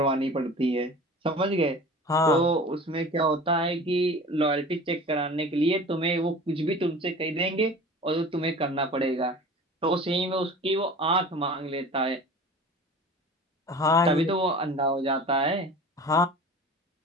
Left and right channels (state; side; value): normal; both; correlation 0.39